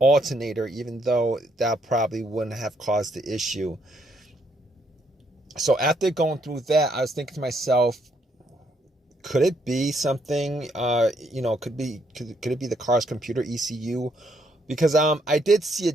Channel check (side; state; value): both; normal; correlation 0.72